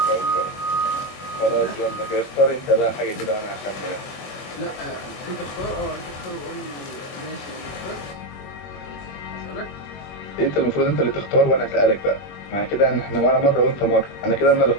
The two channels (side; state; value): right; late; 22 ms